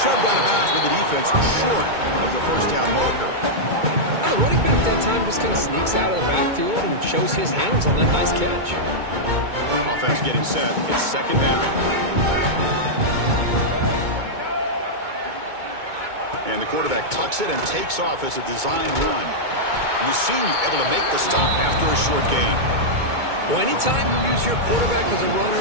shoved out of bounds with the defense short of the 1st down marker. Now the running back that time just kind of sneaks out of the backfield and shows his hands on that nice catch. Offense getting set. It's 2nd down. And the quarterback tucks it and takes off as a design run. And the senior able to make the stop after a short gain. Well, anytime you use your quarterback as a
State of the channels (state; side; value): late; left; 2.2 ms